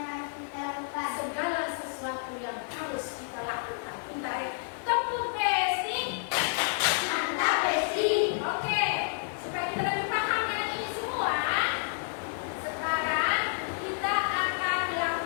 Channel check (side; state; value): right; silent; 58 dB below the other